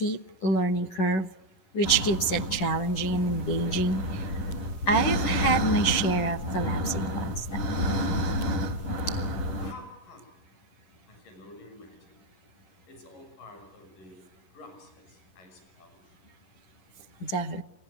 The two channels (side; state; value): right; late; 11 ms